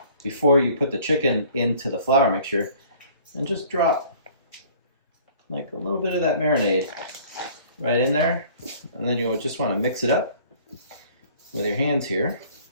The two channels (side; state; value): both; inverted; correlation -0.52